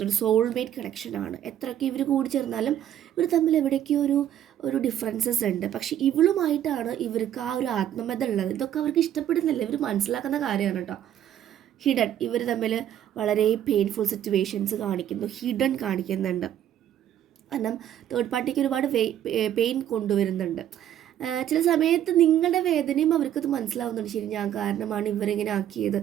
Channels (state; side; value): quieter; left; 10.9 dB